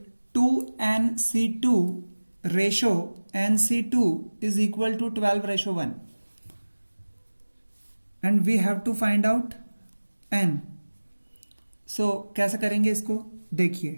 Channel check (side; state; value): both; inverted; correlation -1.00